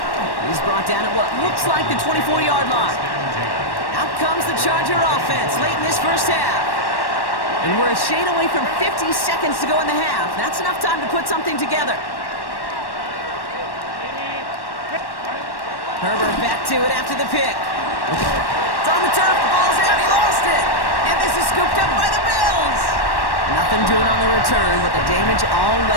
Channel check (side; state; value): right; late; 1.1 ms